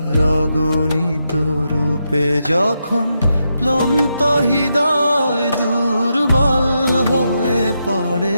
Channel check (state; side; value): inverted; both; correlation -0.84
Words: অগণিত রূপে। যখন ক্লান্ত হৃদয় দুর্বল হয়ে পড়ে,